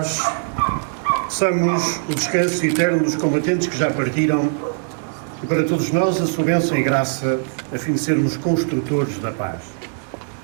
peçamos o descanso eterno dos combatentes que já partiram e para todos nós a sua bênção e graça, a fim de sermos construtores da paz.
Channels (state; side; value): silent; left; digital silence